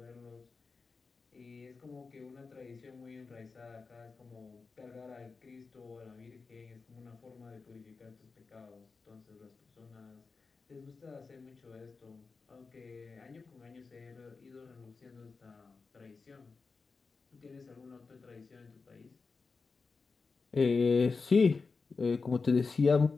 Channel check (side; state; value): right; quieter; 4.5 dB